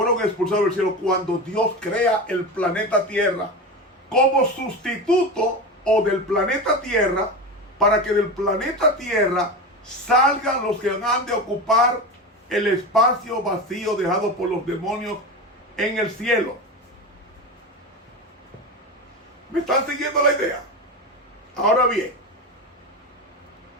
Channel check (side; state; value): both; normal; correlation 0.23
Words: expulsados del cielo, cuando Dios crea el planeta Tierra como sustituto o del planeta Tierra, para que del planeta Tierra salgan los que han de ocupar el espacio vacío dejado por los demonios en el cielo. ¿Me están siguiendo la idea? Ahora bien,